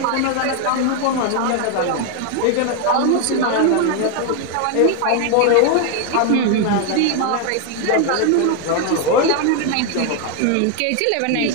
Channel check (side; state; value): both; different; correlation 0.01